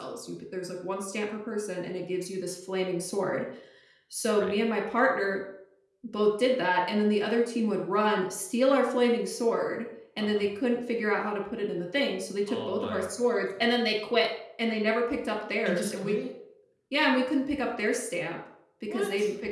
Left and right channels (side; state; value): both; identical; correlation 1.00